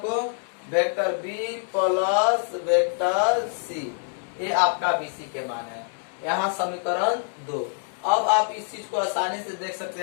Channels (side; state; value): right; silent; digital silence